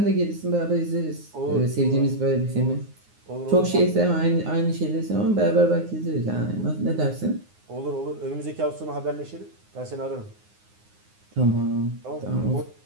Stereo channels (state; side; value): late; left; 9.6 ms